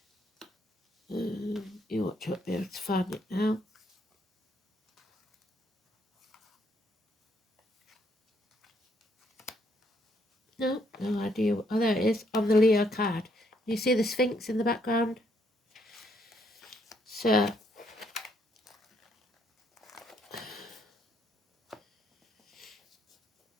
You ought to be able to find it now. No idea. Oh, there it is on the Leo card. You see the Sphinx in the background? So,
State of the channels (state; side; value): normal; both; correlation 0.72